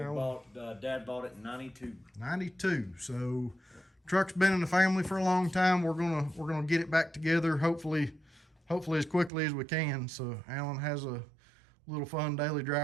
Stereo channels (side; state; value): left; drops out; at 9.3 s